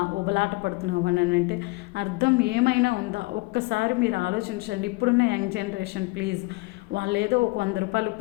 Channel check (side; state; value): right; quieter; 24.9 dB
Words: ఉబలాట పడుతున్నావు అని అంటే అర్థం ఏమైనా ఉందా? ఒక్కసారి మీరు ఆలోచించండి. ఇప్పుడున్న యంగ్ జనరేషన్ ప్లీజ్, వాళ్ళు ఏదో ఒక 100 రూపాయలు